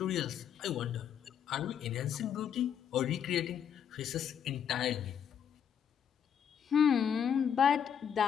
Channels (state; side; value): quieter; right; 8.4 dB